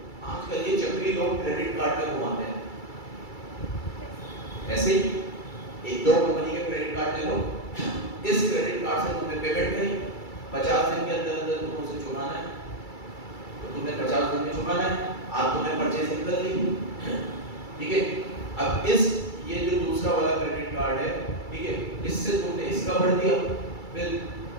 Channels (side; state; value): right; late; 2.3 ms